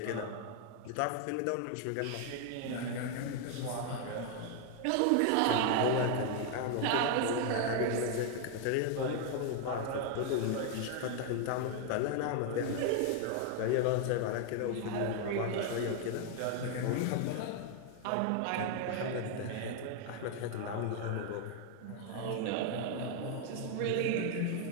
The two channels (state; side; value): different; both; correlation 0.00